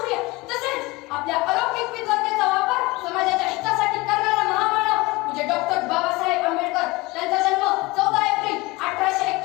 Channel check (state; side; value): quieter; right; 22.6 dB